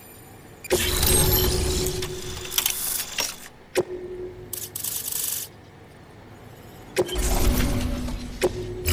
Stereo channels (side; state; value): both; identical; correlation 1.00